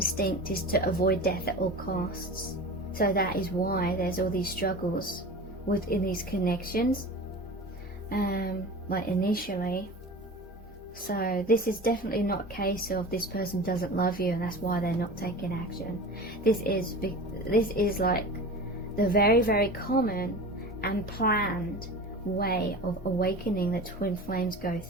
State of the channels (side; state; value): both; normal; correlation 0.34